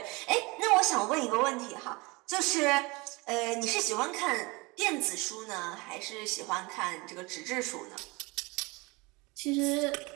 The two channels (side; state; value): left; quieter; 25.5 dB